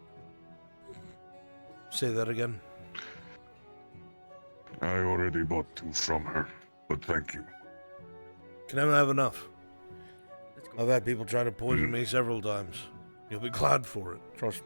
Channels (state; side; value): inverted; both; correlation -1.00